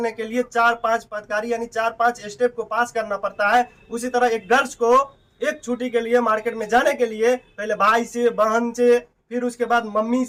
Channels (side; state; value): both; identical; correlation 1.00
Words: के लिए 4-5 पदकारी यानी 4-5 स्टेप को पास करना पड़ता है। उसी तरह एक गर्ल्स को एक छुट्टी के लिए मार्केट में जाने के लिए पहले भाई से, बहन से, फिर उसके बाद मम्मी